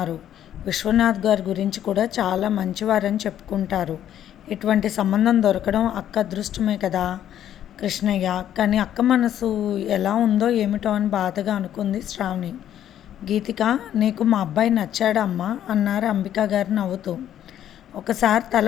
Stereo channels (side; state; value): right; quieter; 10.9 dB